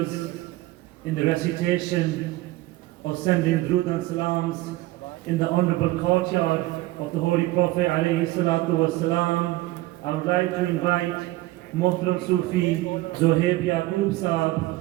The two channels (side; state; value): left; quieter; 18.4 dB